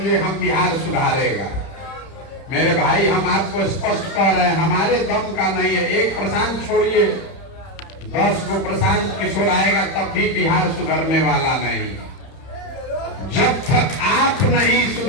ये हम बिहार सुधारेगा। मेरे भाई, हम आपको स्पष्ट कह रहे हैं, हमारे दम का नहीं है। एक प्रशांत छोड़िए, 10 को प्रशांत किशोर आएगा तब भी बिहार सुधरने वाला नहीं। जब तक आप नहीं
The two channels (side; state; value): right; late; 30 ms